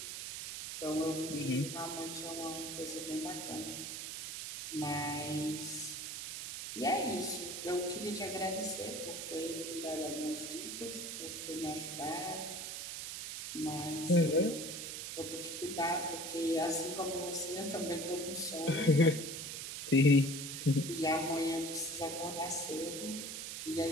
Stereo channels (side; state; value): right; noise; hiss, 6 dB below the sound